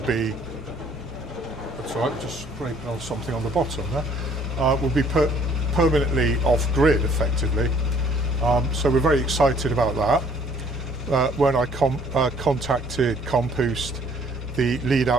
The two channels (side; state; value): both; normal; correlation 0.59